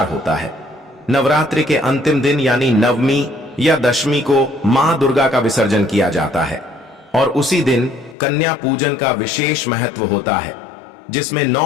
होता है। नवरात्रि के अंतिम दिन यानी नवमी या दशमी को मां दुर्गा का विसर्जन किया जाता है और उसी दिन कन्या पूजन का विशेष महत्व होता है, जिसमें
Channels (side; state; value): right; drops out; at 8.2 s